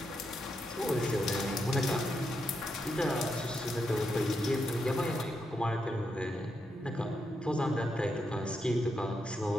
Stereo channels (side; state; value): both; normal; correlation 0.83